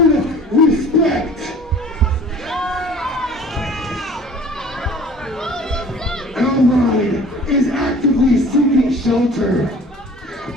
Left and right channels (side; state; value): both; normal; correlation 0.47